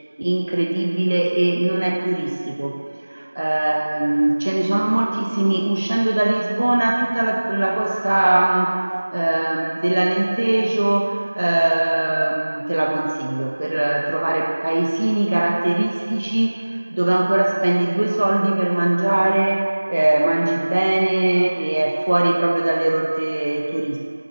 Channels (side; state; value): both; inverted; correlation -1.00